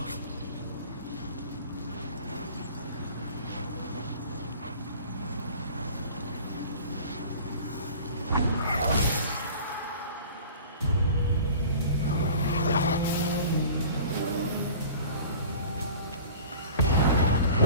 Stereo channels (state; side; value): inverted; both; correlation -0.43